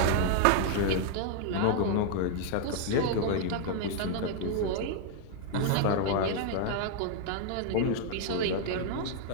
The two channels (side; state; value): both; different; correlation 0.00